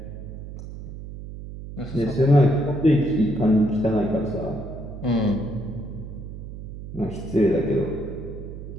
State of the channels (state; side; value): noise; right; hum, 11 dB below the sound